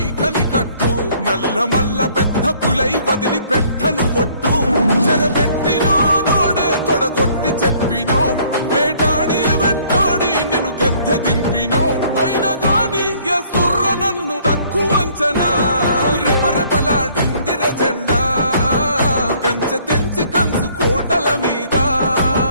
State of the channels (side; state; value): both; inverted; correlation -0.60